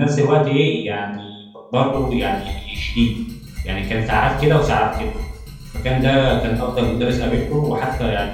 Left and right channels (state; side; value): identical; both; correlation 1.00